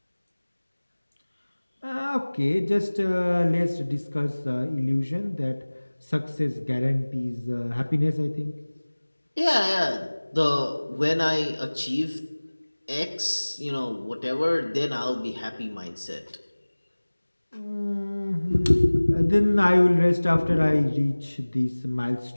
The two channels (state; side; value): inverted; both; correlation -1.00